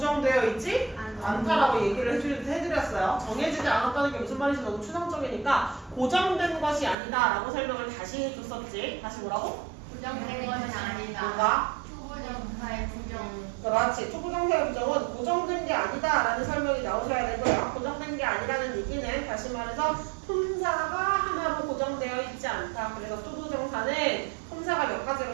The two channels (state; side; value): drops out; left; at 7.0 s